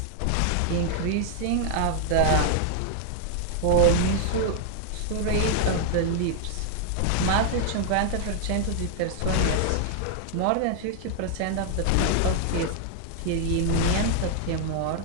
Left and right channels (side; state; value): both; different; correlation 0.00